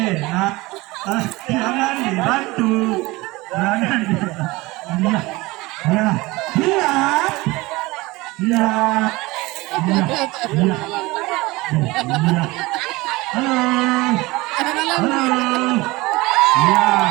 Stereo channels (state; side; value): quieter; left; 21.6 dB